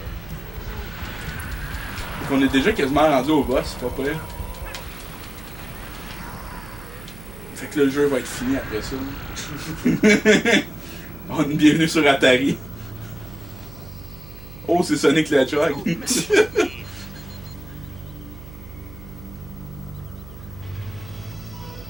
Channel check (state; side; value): noise; right; hum, 15 dB below the sound